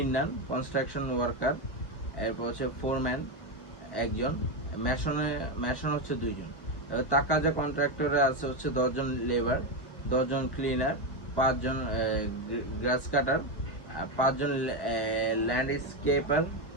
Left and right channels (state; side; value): late; right; 1.1 ms